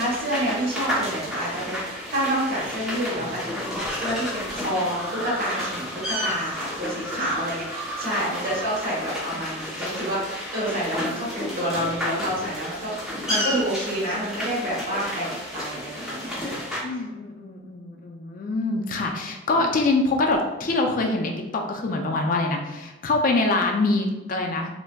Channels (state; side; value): normal; both; correlation 0.23